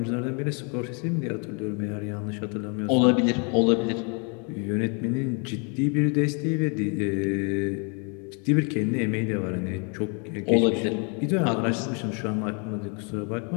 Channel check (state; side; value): quieter; right; 36.6 dB